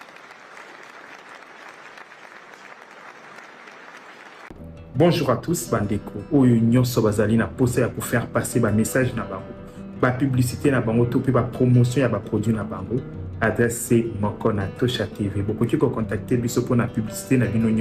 Bonjour à tous, bandeko. Oyo nyonso bazali na posa ya pour faire passer ba message na bango. Ba publicité na bango to pe ba promotion ya ba produit na bango. Adresse c'est moko na Tosha TV. Bokoki ko contacter biso pour na publicité na bino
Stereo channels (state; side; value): identical; both; correlation 1.00